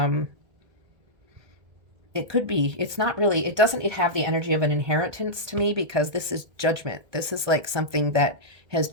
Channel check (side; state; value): left; late; 1.8 ms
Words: it could be, it's not really, it doesn't have the energy of an inheritance to me, because this is Judgment. This is like something that has